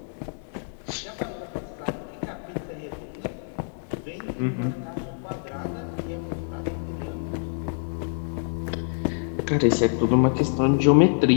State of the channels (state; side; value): silent; right; digital silence